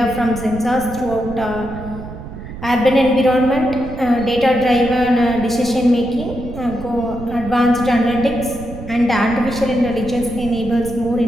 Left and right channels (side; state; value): right; noise; rumble, 12 dB below the sound